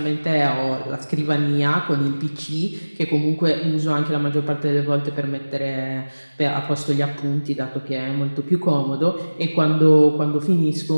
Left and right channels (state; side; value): inverted; both; correlation -1.00